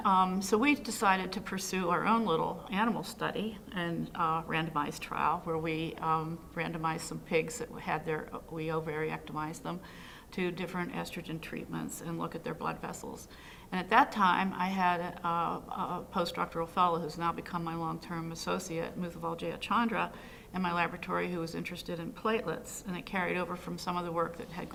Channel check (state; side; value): identical; both; correlation 1.00